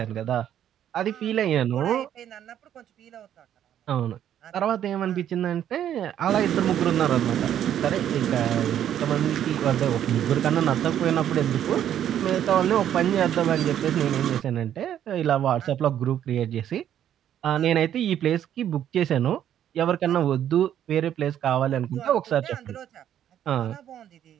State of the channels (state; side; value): quieter; left; 10.5 dB